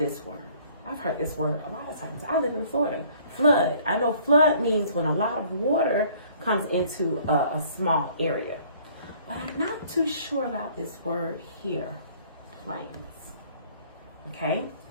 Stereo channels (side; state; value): both; inverted; correlation -0.57